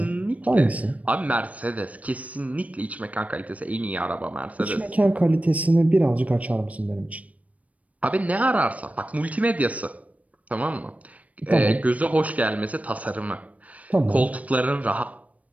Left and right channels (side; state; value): left; late; 0.069 ms